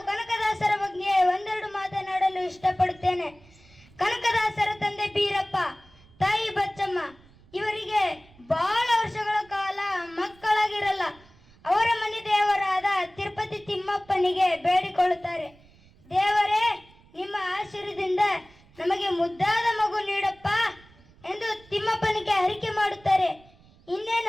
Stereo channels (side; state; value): right; noise; rumble, 27 dB below the sound